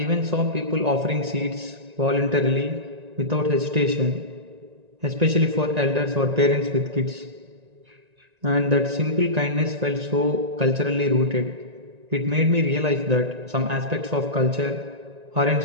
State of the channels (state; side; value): late; left; 1.9 ms